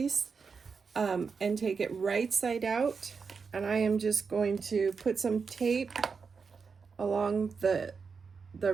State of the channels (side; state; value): left; quieter; 5.4 dB